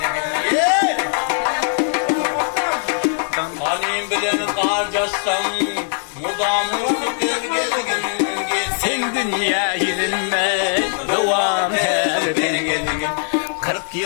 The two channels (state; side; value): silent; right; digital silence